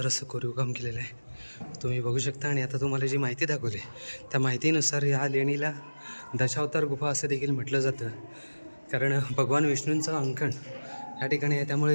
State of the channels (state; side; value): inverted; both; correlation -1.00